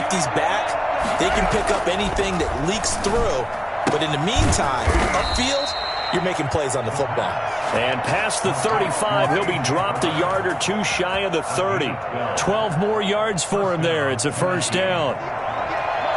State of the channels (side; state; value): both; identical; correlation 1.00